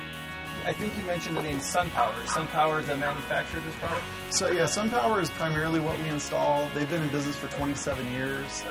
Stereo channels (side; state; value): both; identical; correlation 1.00